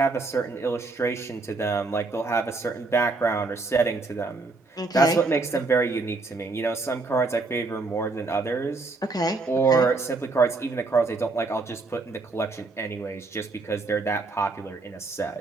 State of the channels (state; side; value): quieter; left; 3.5 dB